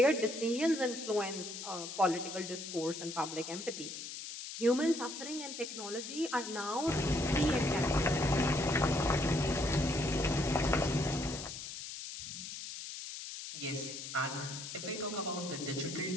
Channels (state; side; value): noise; left; hiss, 8 dB below the sound